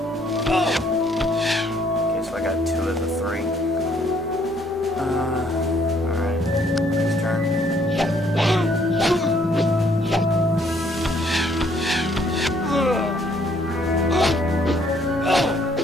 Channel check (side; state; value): both; normal; correlation 0.65